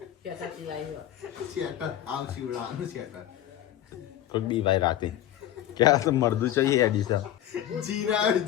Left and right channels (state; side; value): quieter; right; 12.1 dB